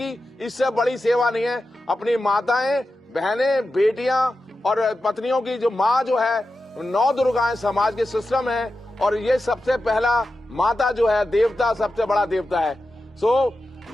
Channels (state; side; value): normal; both; correlation 0.91